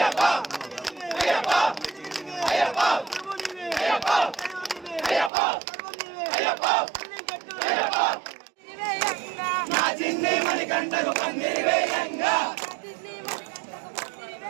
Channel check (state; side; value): drops out; left; at 5.3 s